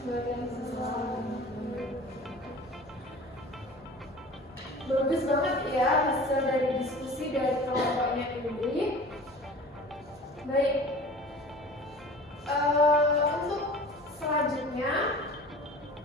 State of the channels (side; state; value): left; noise; hum, 27 dB below the sound